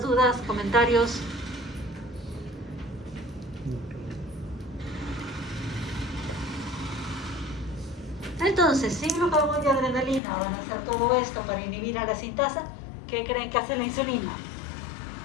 dudas, comentarios? Entonces, si glucagón y adrenalina van a hacer todo esto para inhibir a la sintasa, ¿qué creen que hace la insulina?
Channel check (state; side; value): drops out; right; at 10.2 s